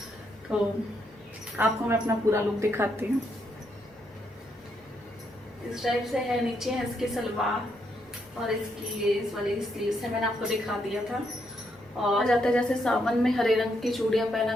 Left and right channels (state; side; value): normal; both; correlation 0.77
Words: तो आपको मैं अपना पूरा लुक दिखाती हूँ। इस टाइप से है, नीचे है इसकी सलवार और इसकी इस वाली स्लीव्स है, मैंने आपको दिखा दिया था। और जाता जैसे सावन में हरे रंग की चूड़ियाँ पहना